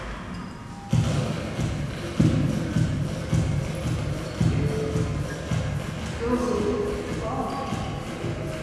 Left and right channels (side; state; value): both; identical; correlation 1.00